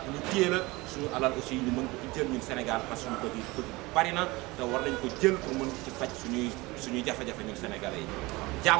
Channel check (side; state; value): left; quieter; 22.4 dB